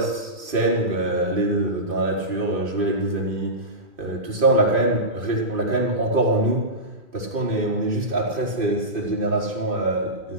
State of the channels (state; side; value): late; left; 2.5 ms